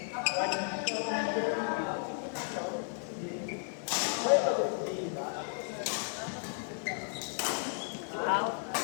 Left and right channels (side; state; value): right; silent; 55 dB below the other